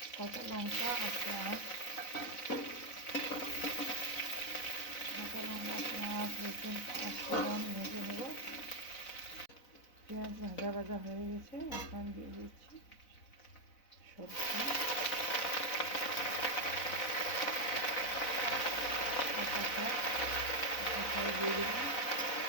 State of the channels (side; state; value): right; late; 4.0 ms